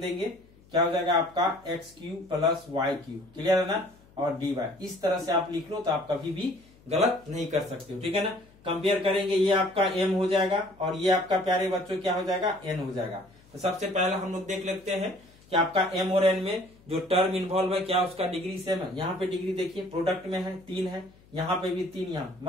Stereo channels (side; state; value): left; noise; hum, 27 dB below the sound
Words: क्या हो जाएगा आपका x³ प्लस y³। क्लियर है ना। और dy इस तरह से आप लिख लो तो आप कभी भी गलत नहीं कर सकते हो। ठीक है ना। कंपेयर करेंगे, ये आपका m हो जाएगा और ये आपका प्यारे बच्चों क्या हो जाएगा n हो जाएगा। तो सबसे पहले हम लोग देख लेते हैं कि आपका m और n में जो टर्म इन्वॉल्व है क्या उसका डिग्री सेम है। यहाँ पे डिग्री देखिए प्रोडक्ट में है 3 है, यहाँ पे भी 3 यहाँ,